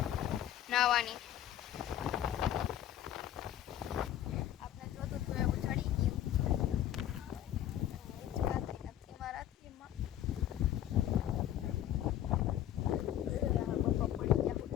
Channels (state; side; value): quieter; right; 11.7 dB